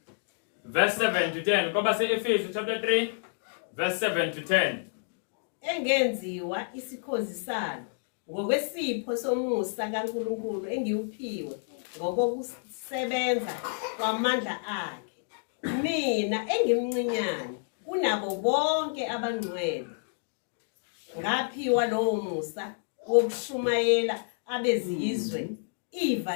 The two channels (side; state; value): right; silent; digital silence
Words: Verse 7 to 10. Koba se-Efesi chapter 3 verse 7 to 10. Engenziwa isikhozi salo ngokwesipho somusa kaNkulunkulu engiwuphiwe ngokusebenza kwamandla akhe. Mina engimncinyane kunabo bonke abangcwele ngaphiwa lowo musa wokushumayela abezizwe